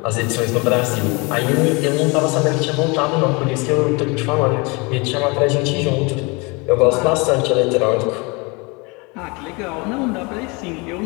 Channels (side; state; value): right; quieter; 28.3 dB